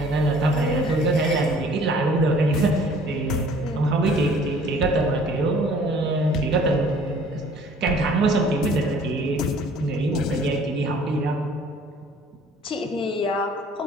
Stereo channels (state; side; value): normal; both; correlation 0.53